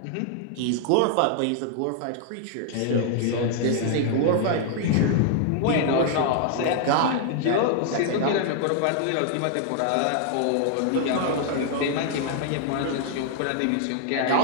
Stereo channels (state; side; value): different; both; correlation 0.00